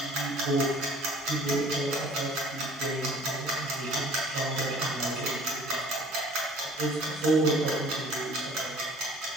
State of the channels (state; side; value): normal; both; correlation 0.51